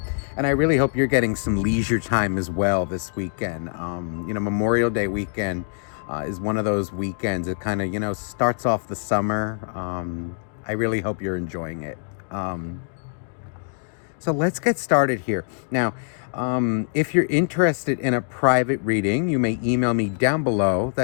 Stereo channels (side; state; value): right; silent; digital silence